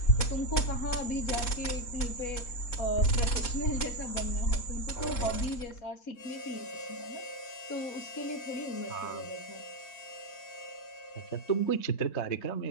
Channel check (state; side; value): late; right; 3.7 ms